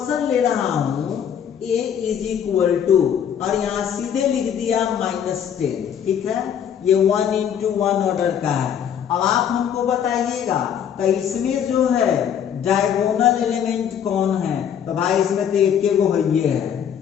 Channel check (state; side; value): quieter; right; 8.7 dB